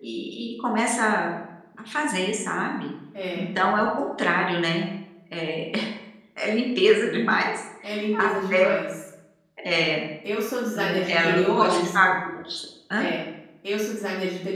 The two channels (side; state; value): both; identical; correlation 1.00